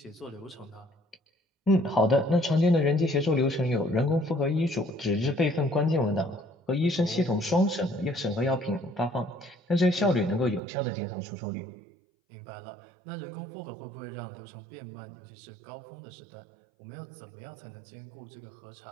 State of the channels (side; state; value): left; drops out; at 10.6 s